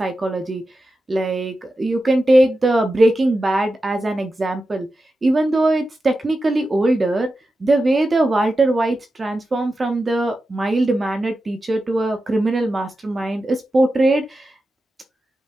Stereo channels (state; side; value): normal; both; correlation 0.91